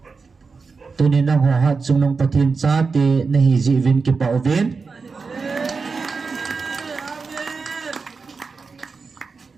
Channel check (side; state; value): left; quieter; 4.7 dB